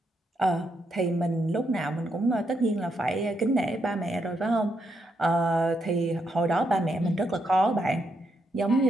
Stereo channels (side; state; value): both; normal; correlation 0.79